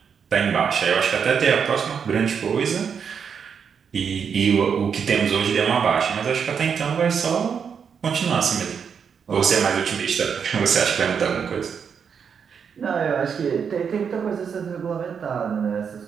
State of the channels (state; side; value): quieter; left; 6.8 dB